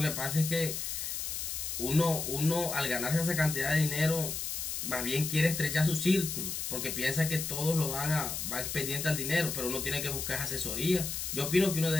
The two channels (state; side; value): noise; left; hiss, 4 dB below the sound